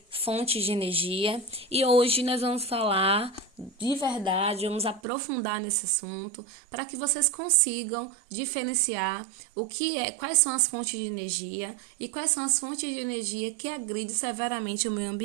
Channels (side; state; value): left; drops out; at 5.0 s